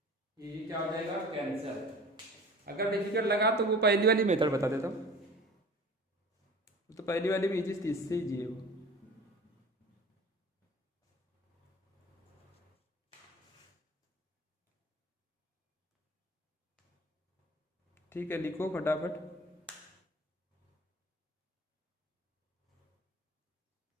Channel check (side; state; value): both; normal; correlation 0.41